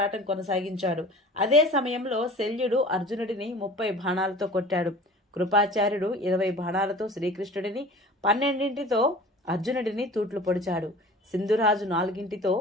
కొనసాగించాడు. అదే సమయంలో శల్యుడు అర్జునుడిని 30 బాణాలతో కొట్టాడు. కృపాచార్యుడు 20 బాణాలతో శ్రీకృష్ణుడిని, 12 అర్జునుడిని తూట్లు పొడిచాడు. సింధురాజు 4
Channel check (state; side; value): normal; both; correlation 0.41